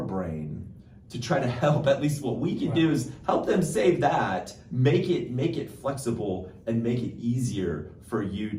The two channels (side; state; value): both; identical; correlation 1.00